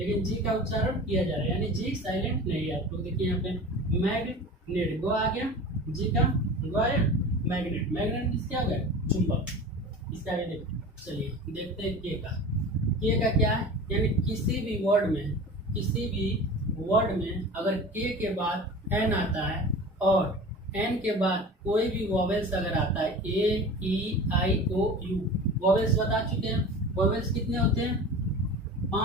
जी का उच्चारण किया जा रहा है, यानी जी साइलेंट नहीं है। आप लोग देखिए यहाँ पे मैग्नेट, गो आ गया, जी का गो आया, मैग्नेट, मैग्नेट क्या हो गया, चुंबक। इसका आगे देखते, चलिए देखते हैं के का। के का क्या है, यानी किसी भी वर्ड में, किसी भी वर्ड में अगर के बाद एन आता है और एन के बाद कोई भी वॉवेल्स अगर आता है, ए ई आई ओ यू, वॉवेल्स बता चुके हैं, वॉवेल्स कितने होते हैं,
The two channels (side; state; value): both; normal; correlation 0.36